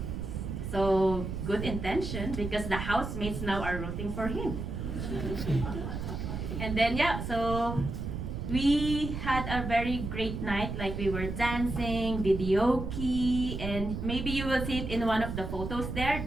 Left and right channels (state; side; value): noise; right; rumble, 5 dB below the sound